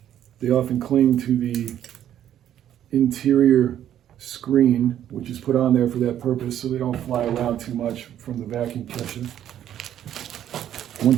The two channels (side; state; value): left; quieter; 10.9 dB